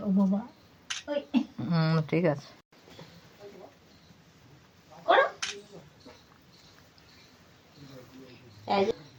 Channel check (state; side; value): identical; both; correlation 1.00